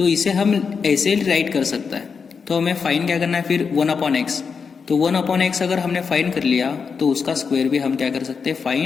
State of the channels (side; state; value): right; quieter; 5.7 dB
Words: इसे हम ऐसे राइट कर सकते हैं. तो हमें फाइंड क्या करना है फिर? 1/x. तो 1/x अगर हमने फाइंड कर लिया तो उसका स्क्वायर भी हम क्या कर सकते हैं?